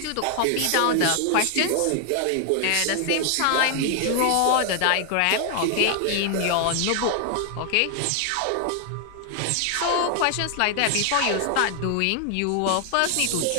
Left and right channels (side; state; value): both; different; correlation 0.00